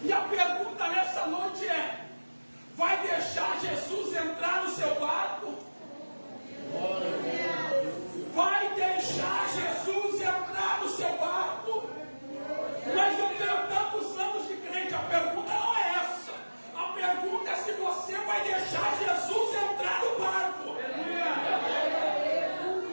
E a pergunta nessa noite é: vai deixar Jesus entrar no seu barco? Vai deixar Jesus entrar no seu barco? Mas eu tenho tantos anos de crente, a pergunta não é essa. A pergunta é se você vai deixar Jesus entrar no barco.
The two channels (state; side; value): inverted; both; correlation -1.00